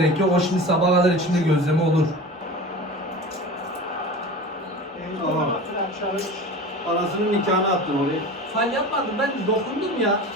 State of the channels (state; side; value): normal; both; correlation 0.34